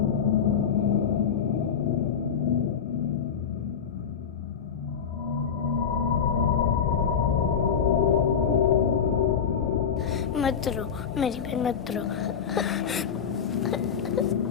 मत रो मेरी बहन, मत रो।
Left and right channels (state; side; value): quieter; right; 7.3 dB